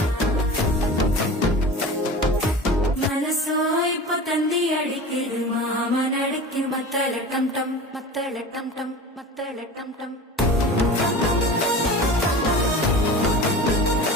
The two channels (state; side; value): normal; both; correlation 0.35